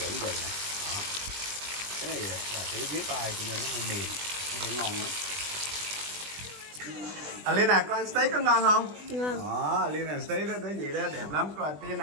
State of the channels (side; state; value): left; late; 20 ms